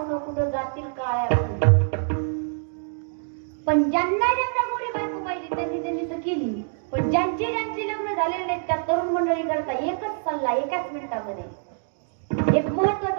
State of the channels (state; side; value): silent; left; digital silence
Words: कुठं जातील काळ्या. पण ज्यांना ज्यांना गोरी बायको पाहिजे त्यांनी त्यांनी तर केली. पण ज्यांची लग्न झालेले नाहीत त्या तरुण मंडळी करता एकच सल्ला एकाच मिनिटामध्ये एक